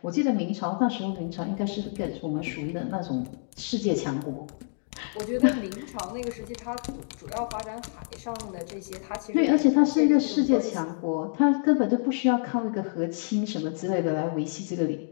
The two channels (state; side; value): silent; right; digital silence